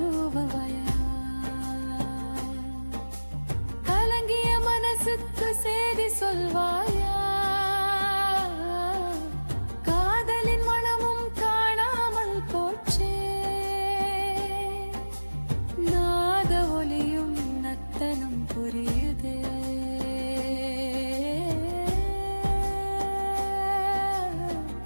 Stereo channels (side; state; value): both; inverted; correlation -1.00